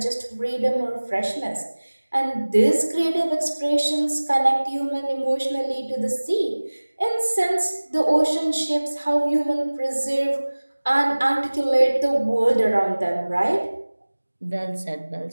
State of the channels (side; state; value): both; inverted; correlation -1.00